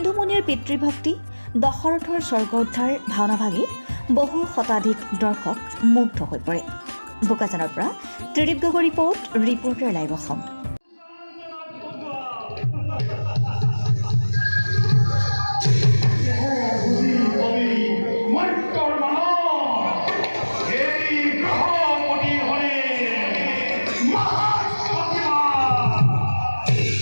পিতৃভক্তি দশৰথৰ স্বৰ্গ উদ্ধাৰ ভাওনাভাগী বহু শতাধিক দৰ্শক মুগ্ধ হৈ পৰে। বোকাজানৰ পৰা ত্ৰিদীপ গগৈ ৰিপৰ্টাৰ লাইভ অসম।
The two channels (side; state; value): both; inverted; correlation -1.00